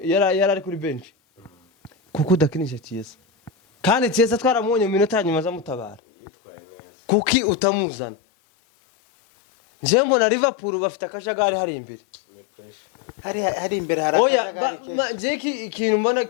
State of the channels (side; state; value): right; drops out; at 6.0 s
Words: yari kuri bench kuko udakinisha Chiesa kandi Chiesa twaramunye mu minota nyuma za mutabara kuki utamuzana nje mbona Liverpool bafite akajagari hari imbere hari imbere harakajagari oya jeki ikintu mbona